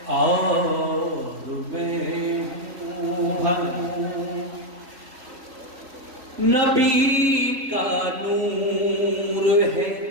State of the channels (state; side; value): late; left; 3.8 ms